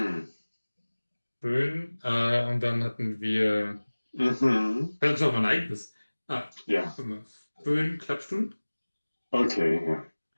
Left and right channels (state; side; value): inverted; both; correlation -1.00